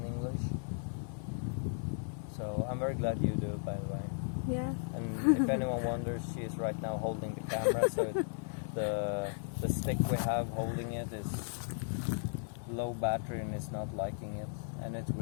English. So I'm very glad you do, by the way. Yeah. And if anyone wonders, she is right now holding the camera, so the stick we have holding it is low battery and it's not liking it, and it's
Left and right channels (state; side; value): silent; right; 54 dB below the other